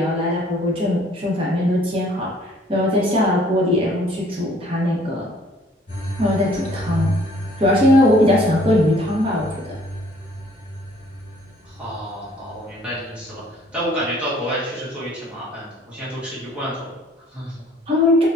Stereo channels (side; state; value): both; normal; correlation 0.58